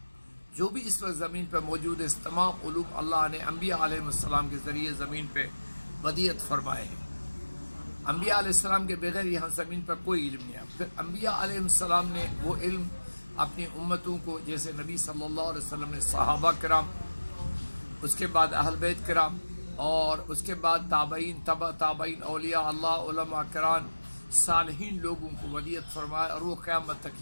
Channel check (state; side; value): inverted; both; correlation -1.00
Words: جو بھی اس وقت زمین پہ موجود ہے، اس تمام علوم اللہ نے انبیاء علیہ السلام کے ذریعے زمین پہ ودیعت فرمائے ہیں۔ انبیاء علیہ السلام کے بغیر یہاں زمین پر کوئی علم نہیں ہے۔ پھر انبیاء علیہ السلام نے وہ علم اپنی امتوں کو، جیسے نبی صلی اللہ علیہ وسلم نے صحابہ کرام، اس کے بعد اہل بیت کرام، اور اس کے بعد تابعین، تبع تابعین، اولیاء اللہ، علماء کرام، صالحین لوگوں کو ودیعت فرمائے، اور وہ قیامت تک